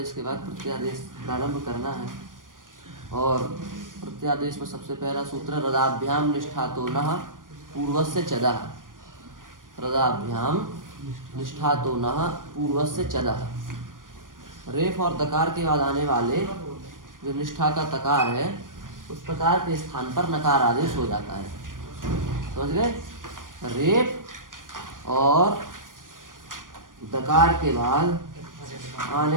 के बाद प्रत्यादेश प्रारंभ करना है। और प्रत्यादेश में सबसे पहला सूत्र रदाभ्याम निष्ठातो नः पूर्वस्य चदः। रदाभ्याम निष्ठातो नः पूर्वस्य चदः। रेफ और दकार के बाद आने वाले जो निष्ठा का तकार है उस प्रकार के स्थान पर नकार आदेश हो जाता है। समझ गए? रेफ और दकार के बाद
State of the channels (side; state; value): left; late; 0.90 ms